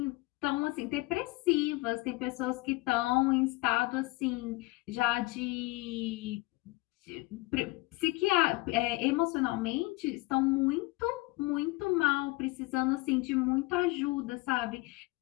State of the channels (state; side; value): quieter; right; 22.7 dB